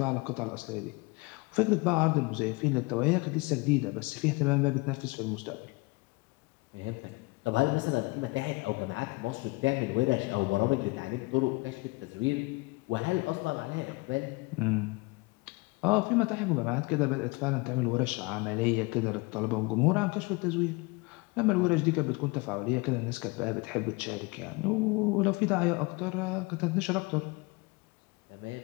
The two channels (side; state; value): right; quieter; 26.2 dB